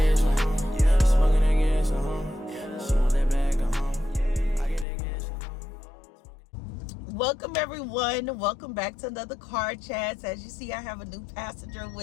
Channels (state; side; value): drops out; right; at 4.9 s